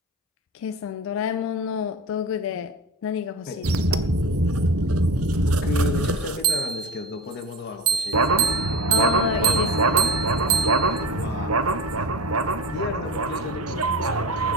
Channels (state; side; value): normal; both; correlation 0.28